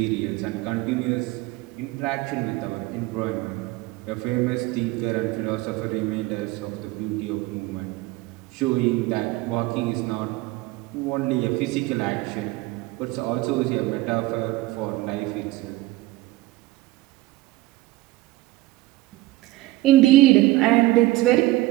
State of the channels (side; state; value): left; quieter; 18.4 dB